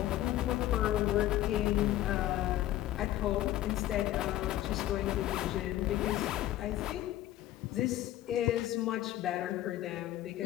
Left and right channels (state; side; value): quieter; right; 14.1 dB